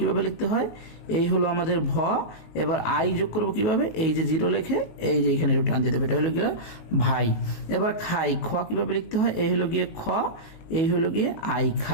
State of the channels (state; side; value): late; right; 19 ms